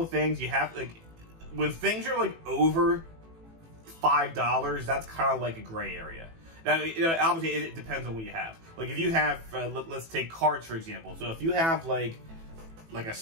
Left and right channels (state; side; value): late; left; 18 ms